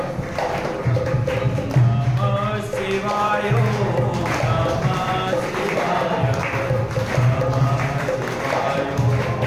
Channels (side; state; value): both; identical; correlation 1.00